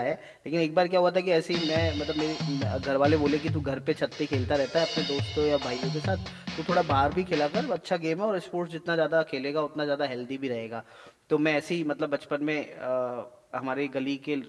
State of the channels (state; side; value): identical; both; correlation 1.00